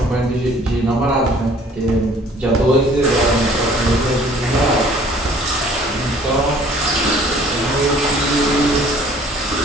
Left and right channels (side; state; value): both; normal; correlation 0.54